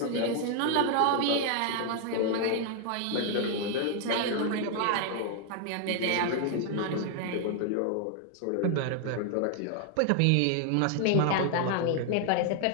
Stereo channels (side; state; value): both; different; correlation 0.00